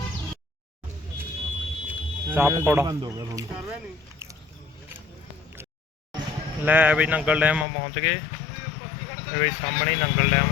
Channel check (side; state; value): right; drops out; at 7.7 s